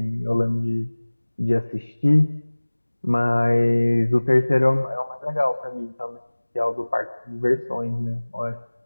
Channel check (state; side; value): inverted; both; correlation -1.00